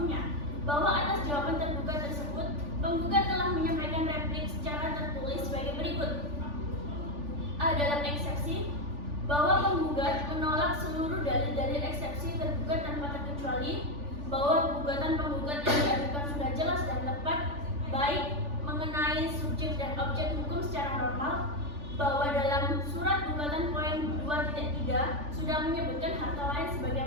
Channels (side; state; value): left; late; 3.4 ms